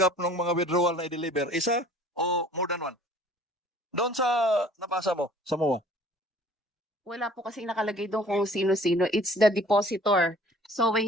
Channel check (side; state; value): both; normal; correlation 0.52